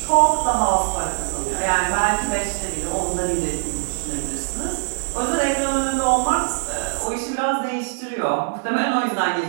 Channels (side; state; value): left; silent; digital silence